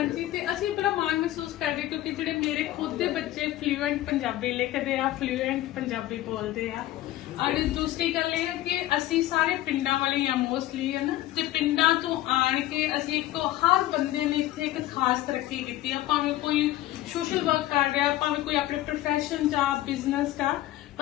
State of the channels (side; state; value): right; quieter; 15.0 dB